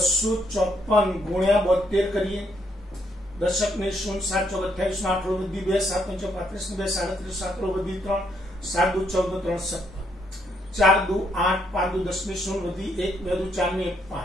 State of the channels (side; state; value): both; normal; correlation 0.74